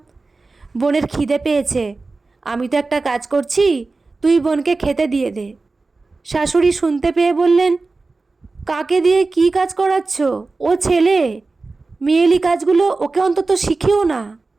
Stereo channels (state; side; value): quieter; left; 3.7 dB